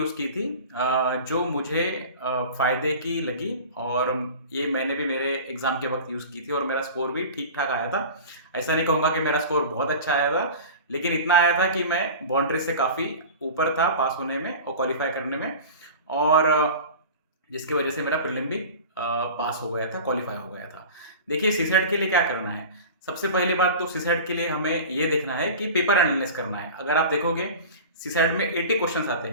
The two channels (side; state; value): both; inverted; correlation -0.36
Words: की थी जो मुझे फ़ायदे की लगी, और ये मैंने भी मेरे एग्ज़ाम के वक़्त यूज़ की थी और मेरा स्कोर भी ठीक-ठाक आया था। ऐसा नहीं कहूँगा कि मेरा स्कोर बहुत अच्छा आया था, लेकिन इतना आया था कि मैं बाउंड्री से काफ़ी ऊपर था पास होने में और क्वालीफ़ाई करने में, और जिसकी वजह से मेरा प्रीलिम भी पास हो गया था, क्वालीफ़ाई हो गया था। देखिए सीसैट के लिए क्या करना है? सबसे पहली बात तो सीसैट के लिए हमें ये देखना है कि पेपर एनालिसिस करना है। अगर आप देखोगे सीसैट में 80 क्वेश्चंस आते